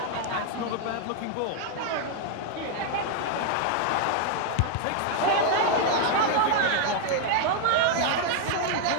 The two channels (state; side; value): different; both; correlation 0.00